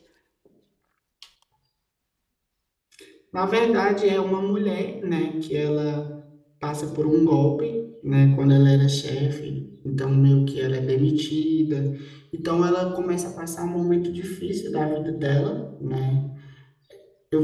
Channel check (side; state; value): both; identical; correlation 1.00